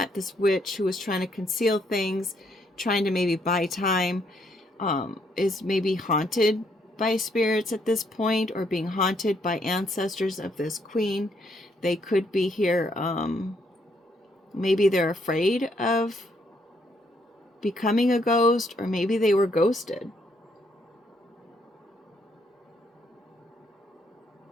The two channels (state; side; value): normal; both; correlation 0.72